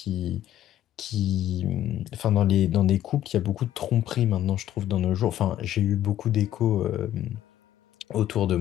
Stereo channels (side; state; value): right; quieter; 12.4 dB